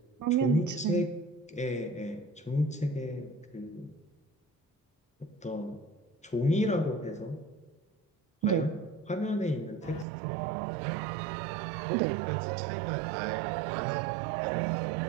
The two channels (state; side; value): drops out; left; at 10.1 s